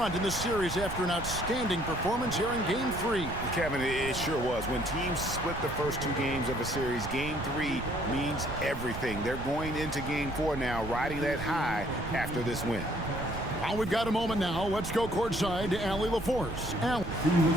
in the series after an outstanding performance here in Game 3. Kevin, it sure was. When teams split the first 2 games of a series, Game 3 means everything. They're going into Game 4 now, riding that high after this win. Well, we've got a moment now. Let's go courtside to Allie LaForce. Allie.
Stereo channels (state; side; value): noise; right; rumble, 9 dB below the sound